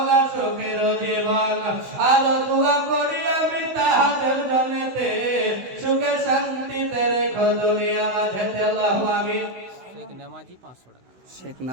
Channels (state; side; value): late; left; 16 ms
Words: সুখের জীবন। আর দোয়া করি আমি তাহাদের জন্যতে সুখে শান্তিতে রেখো দুনিয়া মাঝেতে। আল্লাহু আমিন। শেখ নামাজি 500 টাকা।